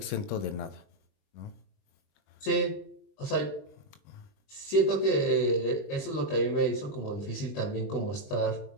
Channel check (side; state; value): right; late; 20 ms